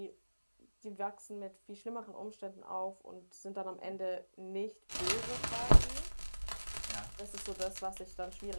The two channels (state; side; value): inverted; both; correlation -1.00